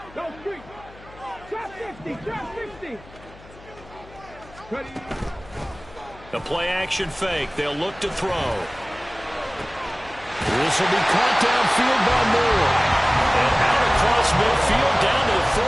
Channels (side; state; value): left; noise; hum, 21 dB below the sound